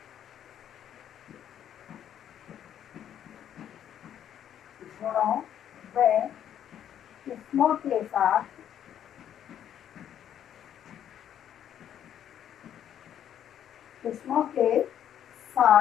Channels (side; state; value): right; quieter; 10.0 dB